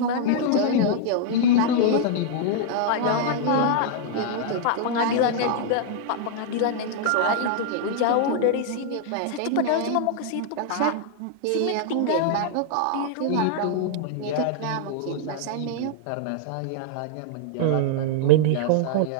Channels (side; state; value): both; different; correlation -0.01